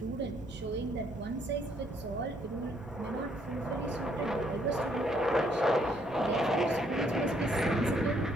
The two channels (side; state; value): both; normal; correlation 0.69